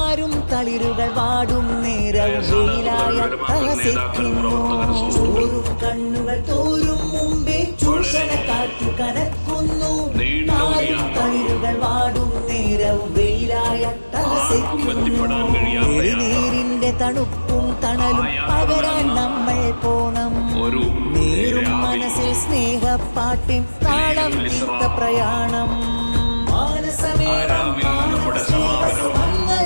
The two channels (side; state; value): both; inverted; correlation -1.00